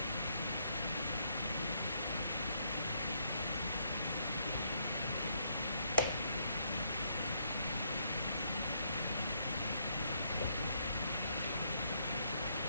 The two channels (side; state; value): both; inverted; correlation -0.74